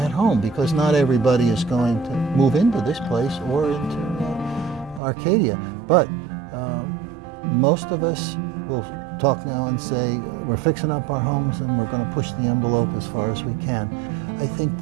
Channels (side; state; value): left; drops out; at 5.0 s